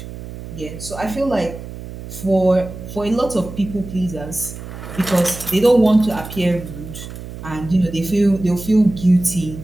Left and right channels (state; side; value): noise; right; hum, 12 dB below the sound